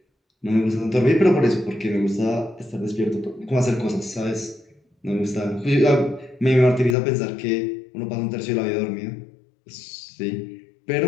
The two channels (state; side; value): drops out; right; at 7.0 s